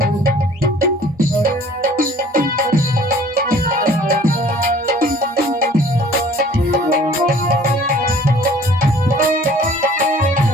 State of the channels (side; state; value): both; normal; correlation 0.52